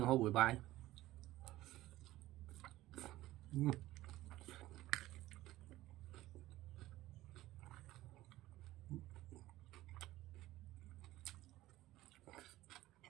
hộp buổi bài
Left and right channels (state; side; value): quieter; left; 16.2 dB